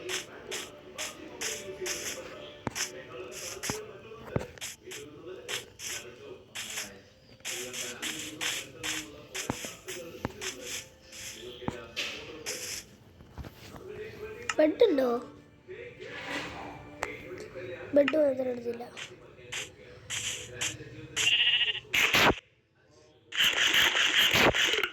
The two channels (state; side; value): identical; both; correlation 1.00